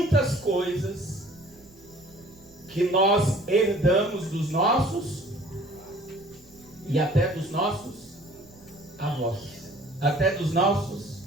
coisas que nós herdamos dos nossos e até dos nossos avós, até dos nossos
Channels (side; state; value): right; noise; rumble, 26 dB below the sound